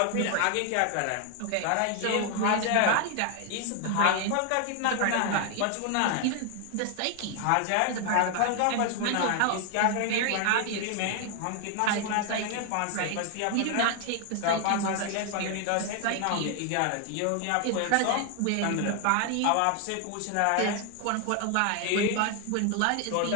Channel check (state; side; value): different; both; correlation 0.01